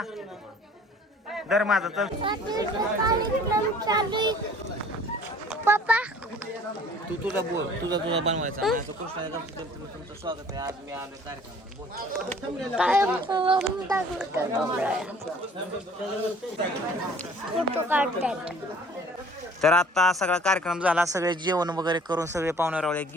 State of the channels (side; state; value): both; normal; correlation 0.52